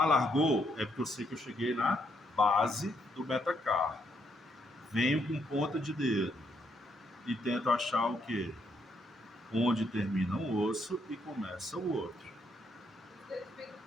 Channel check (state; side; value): normal; both; correlation 0.74